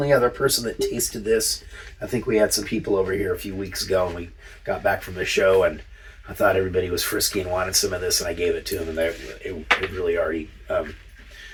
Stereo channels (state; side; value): identical; both; correlation 1.00